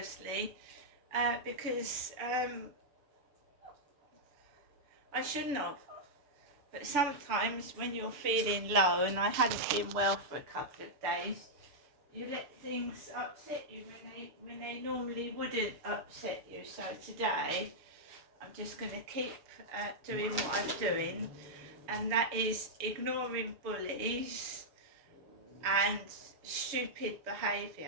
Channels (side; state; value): left; late; 6.8 ms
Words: because I shouldn't have. But sometimes when you're feeling low, and I hadn't been well for a couple of days, you let things upset you when they normally wouldn't upset you. So today I'm just going to keep doing what I'm doing, and that is ignoring bullies and stupid